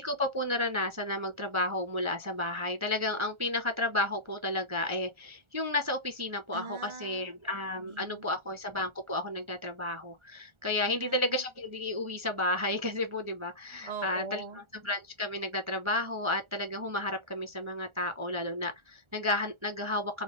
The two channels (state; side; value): late; left; 1.4 ms